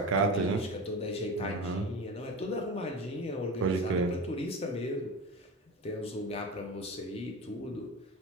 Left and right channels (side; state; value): both; normal; correlation 0.26